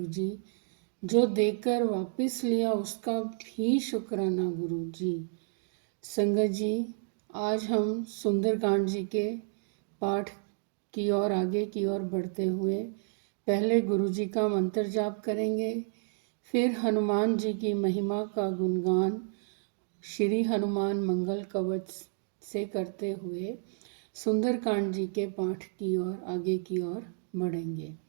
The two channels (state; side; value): silent; left; digital silence